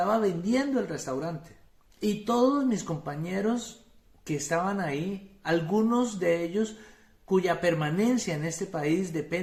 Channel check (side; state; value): both; identical; correlation 1.00